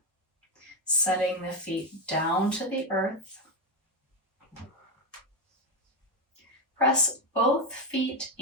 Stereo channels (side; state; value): both; normal; correlation 0.09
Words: setting the feet down to the earth. Press both feet